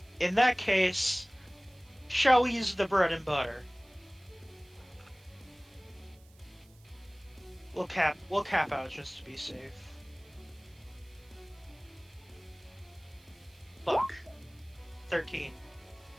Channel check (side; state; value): right; noise; hiss, 29 dB below the sound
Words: In that case, shall we use the bread and butter? We'll cap out just to be safe. Look. 13.